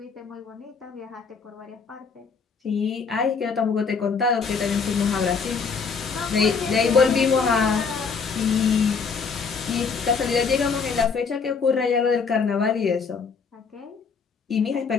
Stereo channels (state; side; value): quieter; right; 5.4 dB